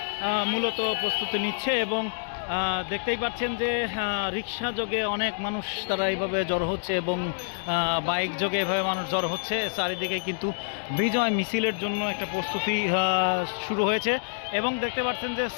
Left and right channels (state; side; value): silent; right; digital silence